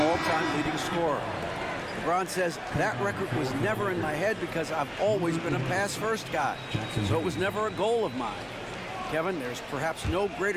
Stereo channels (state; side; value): identical; both; correlation 1.00